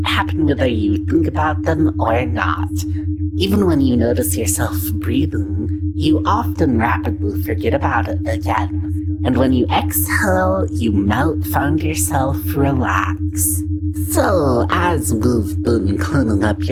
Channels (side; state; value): both; identical; correlation 1.00